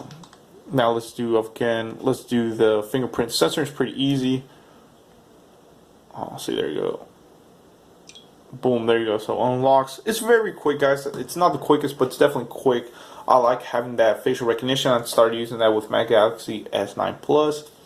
let's do the fingerprint sensor. It's pretty easy. Oh, see, there you go. Boom, there you go. So unlocks. It's very quick, guys. It's not the quickest, but it's definitely quick. I like having that facial recognition. I started using that with my Galaxy S9 Plus.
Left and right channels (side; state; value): both; identical; correlation 1.00